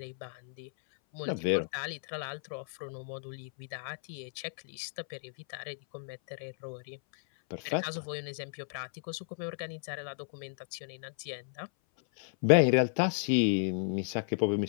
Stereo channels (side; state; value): right; silent; 56 dB below the other